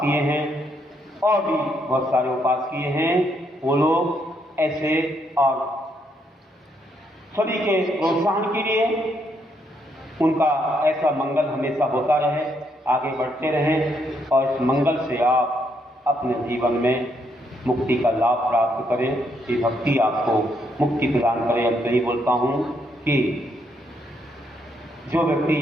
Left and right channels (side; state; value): both; normal; correlation 0.75